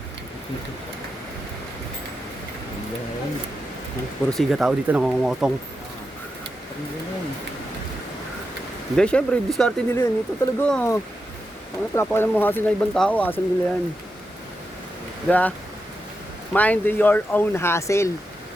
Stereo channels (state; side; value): normal; both; correlation 0.88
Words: Puro siga tao dito nangongotong. Hindi, syempre, diskarte nila yan. Ito talaga. Ang napapakalan mo hassle na ibang tao, hassle nila yan. Diba? Mind your own hassle.